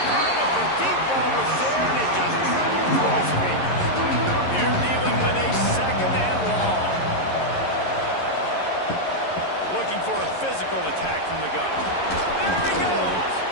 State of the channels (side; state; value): right; late; 11 ms